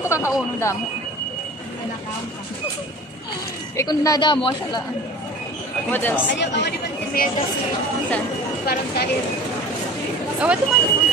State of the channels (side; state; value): both; normal; correlation 0.40